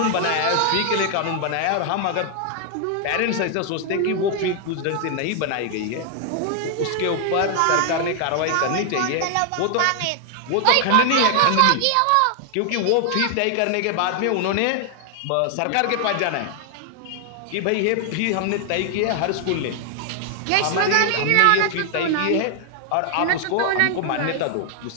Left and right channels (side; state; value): both; different; correlation 0.00